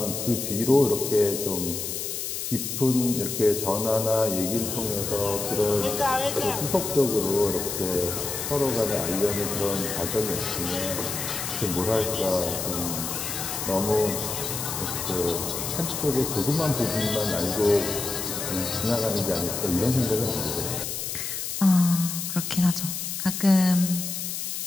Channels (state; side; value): noise; left; hiss, 4 dB below the sound